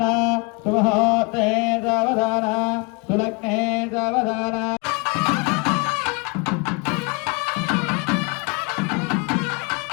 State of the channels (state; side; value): quieter; right; 30.1 dB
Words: सुमुहूर्ते सावधान सुलग्ने सावधान